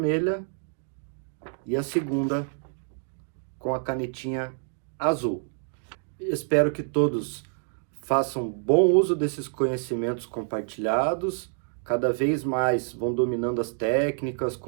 e a segunda com a canetinha azul. Espero que todos façam bom uso desses conhecimentos compartilhados. Cada vez mais vão dominando as técnicas,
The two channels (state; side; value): silent; left; digital silence